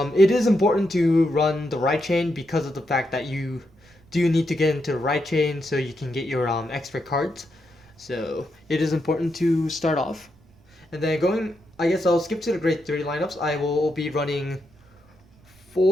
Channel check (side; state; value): right; noise; rumble, 29 dB below the sound